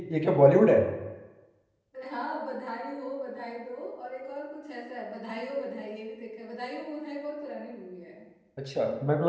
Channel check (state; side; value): identical; both; correlation 1.00